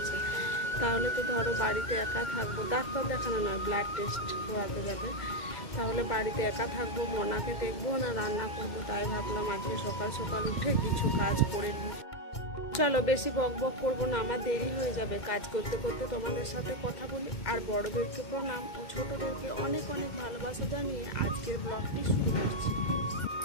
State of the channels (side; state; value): right; late; 2.1 ms